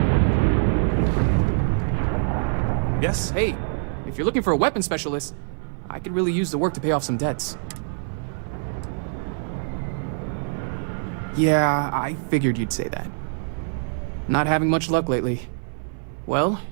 Yes? Hey, if you're looking for a weapon specialist, I could really use the work to pay off some debts. Yeah, I figured you'd say that. Not having much luck lately. Well,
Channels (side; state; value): left; silent; 59 dB below the other